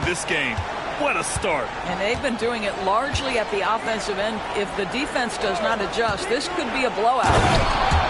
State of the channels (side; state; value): both; identical; correlation 1.00